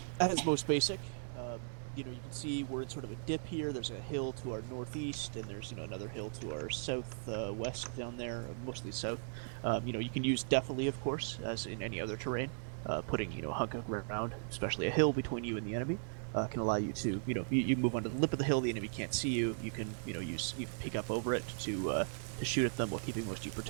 At its most basic, you can see we're in sort of a dip here. There's a hill to our northeast, and there's another hill to our southwest down there, mostly south. You can use definitely, of course, as in any other terrain. Putting a hunk of ground, especially a hill between you and the enemy, can allow you to you move onto the lip of the hill. The enemy can't see you. You can you can peek up over it to shoot at them while keeping most of you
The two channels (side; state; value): left; silent; digital silence